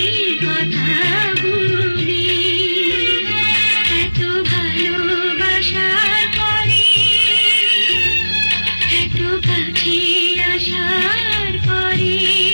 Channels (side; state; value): both; inverted; correlation -1.00